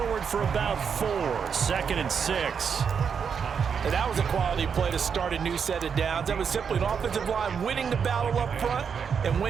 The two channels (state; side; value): quieter; left; 6.7 dB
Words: for about 4. 2nd and 6. And that was a quality play to start a new set of downs. That was simply an offensive line winning the battle up front and